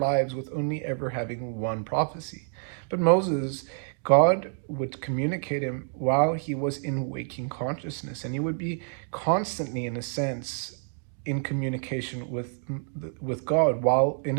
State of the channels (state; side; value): silent; left; 59 dB below the other